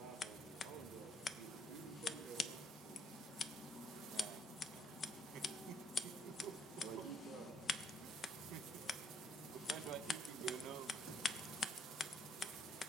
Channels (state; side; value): normal; both; correlation 0.68